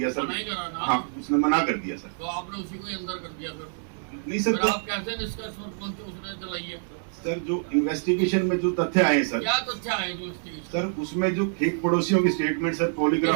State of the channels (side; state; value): left; silent; digital silence